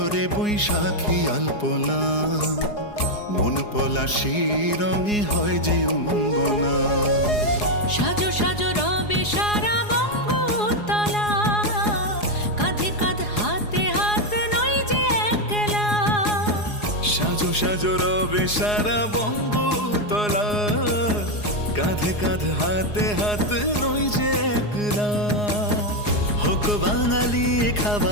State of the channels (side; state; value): right; late; 4.8 ms